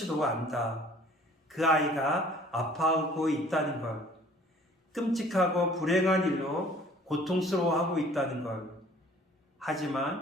안다. 그 아이가 아파하고 있다는 걸. 끔찍하고 불행한 일로 고통스러워하고 있다는 걸.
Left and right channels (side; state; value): both; normal; correlation 0.53